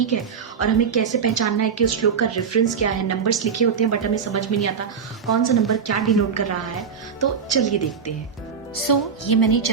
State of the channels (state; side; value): quieter; left; 6.5 dB